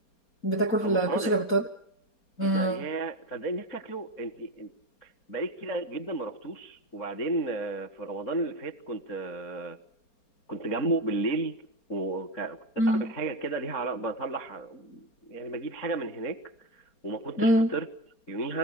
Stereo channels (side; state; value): right; late; 4.3 ms